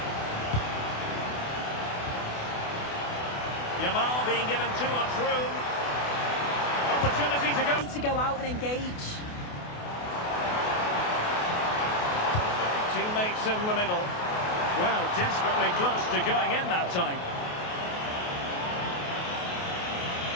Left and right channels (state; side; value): late; right; 28 ms